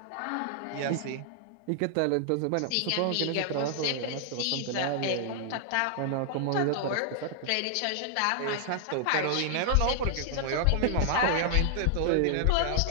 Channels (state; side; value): different; both; correlation 0.00